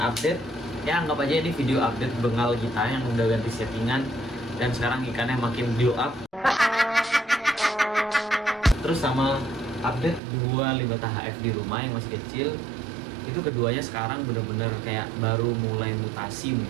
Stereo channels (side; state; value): left; drops out; at 10.2 s